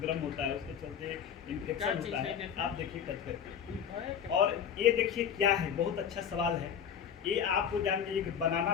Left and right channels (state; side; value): quieter; right; 8.2 dB